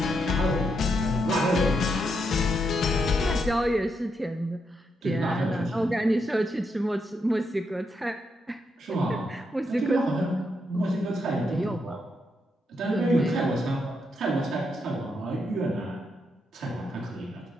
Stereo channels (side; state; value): both; normal; correlation 0.80